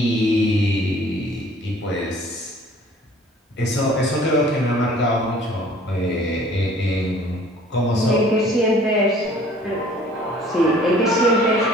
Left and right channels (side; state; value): both; normal; correlation 0.53